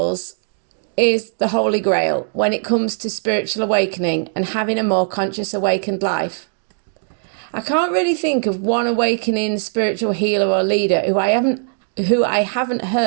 is the holy grail when it comes to spiritual awakening and having a more conscious, awakened life. I can't really think of one awakening spiritual healer or leader who I haven't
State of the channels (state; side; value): silent; left; digital silence